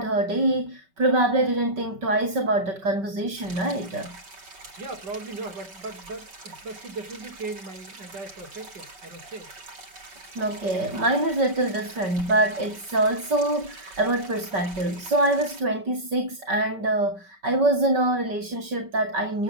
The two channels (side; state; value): left; late; 5.2 ms